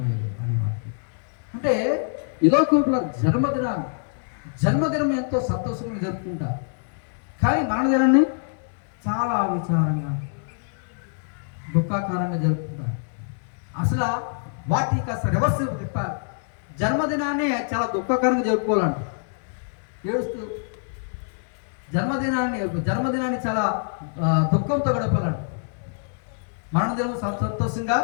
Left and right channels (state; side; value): silent; right; digital silence